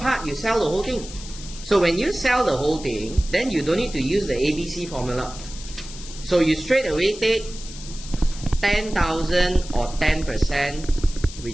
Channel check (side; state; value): left; noise; hiss, 14 dB below the sound